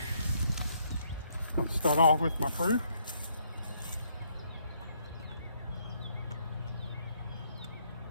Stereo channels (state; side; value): inverted; both; correlation -0.70